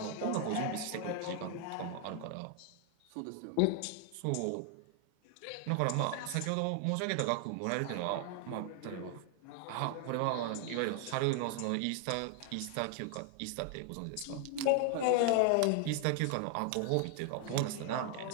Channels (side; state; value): both; different; correlation 0.00